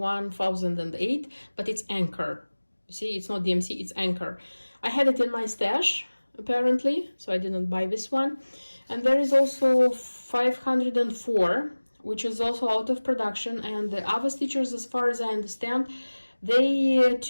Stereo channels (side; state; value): both; inverted; correlation -1.00